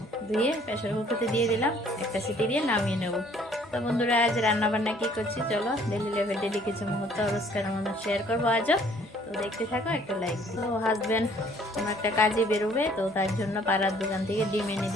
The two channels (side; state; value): both; normal; correlation 0.59